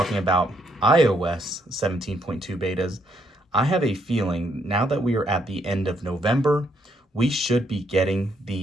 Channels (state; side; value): normal; both; correlation 0.73